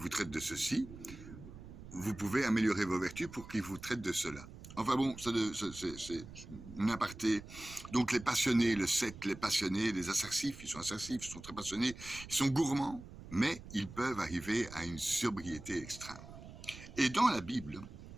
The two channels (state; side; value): noise; right; rumble, 15 dB below the sound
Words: traite de ceci, vous pouvez améliorer vos vertus pour qu'il vous traite de cela. Enfin bon, c'est une aparté. Donc les passionnés, le 7, les passionnés, les assertifs, ils sont très passionnés, ils sont gourmands, mais ils peuvent arriver à une sobriété extrême. Et dans la Bible,